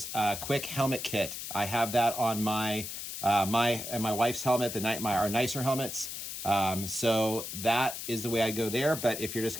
quick helmet kit. I have that on my my wife's helmet, our nicer helmets. So that is the way I go there. But if you're just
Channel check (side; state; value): left; noise; hiss, 7 dB below the sound